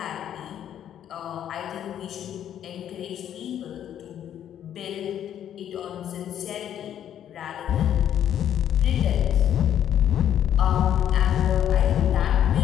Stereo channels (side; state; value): right; quieter; 10.2 dB